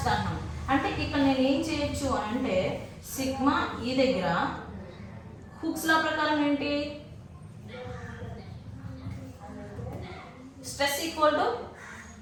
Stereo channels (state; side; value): identical; both; correlation 1.00